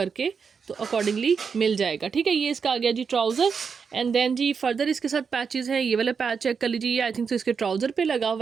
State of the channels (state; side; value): quieter; left; 5.9 dB